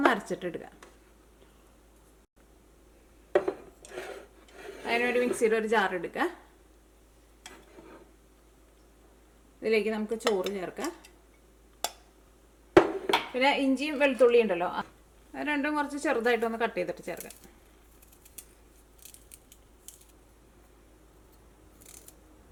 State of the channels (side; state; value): both; identical; correlation 1.00